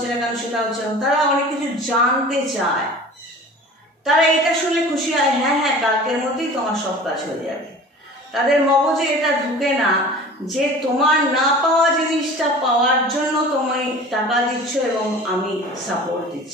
না কেন, সেটা হচ্ছে না। তারা অনেক কিছু জানতে চায়, তারা এটা শুনলে খুশি হয়, হ্যাঁ হ্যাঁ কালকের মধ্যেই তোমার সব কাজ হয়ে যাবে। তাদের মগজে এটা ঢুকে না যে তোমার না পাওয়া জিনিসটা পাওয়ার জন্য তুমি টাকা দিচ্ছ এবং আমি সাপোর্ট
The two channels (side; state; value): both; normal; correlation 0.41